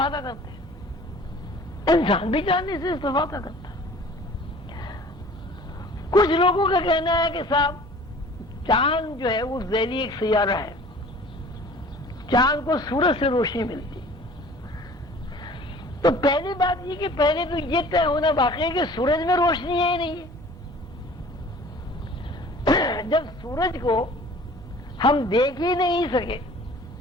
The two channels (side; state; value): both; normal; correlation 0.48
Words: کرتے ہیں انسان بھی چاندنی سے استفادہ کرتا ہے. کچھ لوگوں کا کہنا ہے کہ صاحب چاند جو ہے وہ ذیلی ایک سیارہ ہے، چاند کو سورج سے روشنی ملتی. تو پہلی بات یہ کہ پہلے تو یہ طے ہونا باقی ہے کہ سورج میں روشنی ہے ہی نہیں ہے. جب سورج کو ہم دیکھ ہی نہیں سکے،